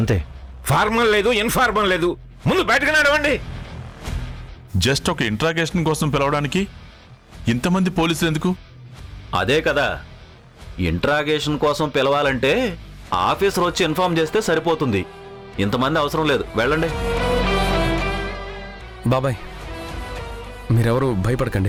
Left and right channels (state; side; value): identical; both; correlation 1.00